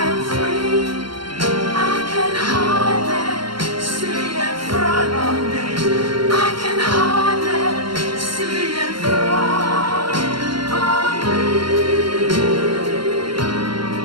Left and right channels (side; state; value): left; late; 0.73 ms